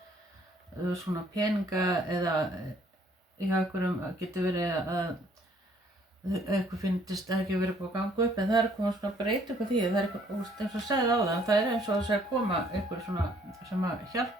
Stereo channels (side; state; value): both; normal; correlation 0.63